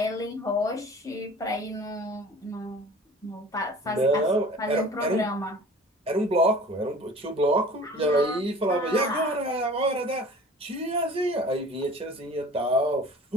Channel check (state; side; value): normal; both; correlation 0.44